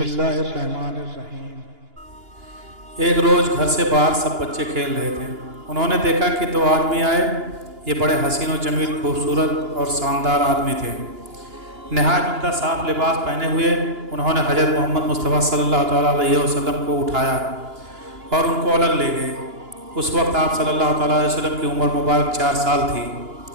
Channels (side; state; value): left; late; 2.9 ms